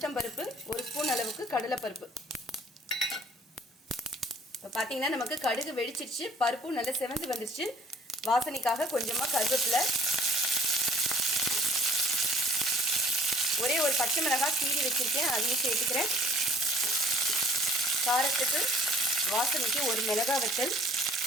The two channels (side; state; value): both; normal; correlation 0.56